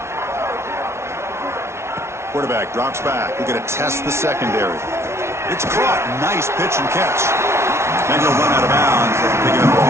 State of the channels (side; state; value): left; late; 0.13 ms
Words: Quarterback drops back. We're going to test the secondary. It's caught. Nice pitch and catch. And he'll run out of bounds, picking up a